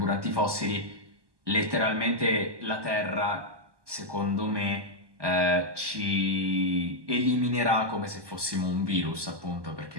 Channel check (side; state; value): left; late; 1.2 ms